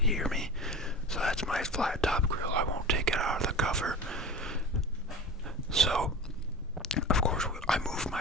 me? So that's my flat top grill. I won't take it out of the cover. So, of course, I moved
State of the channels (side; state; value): both; normal; correlation 0.33